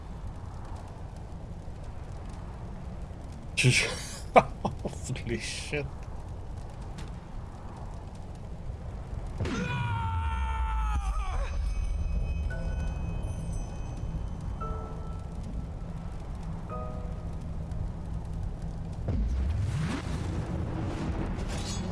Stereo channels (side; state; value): both; identical; correlation 1.00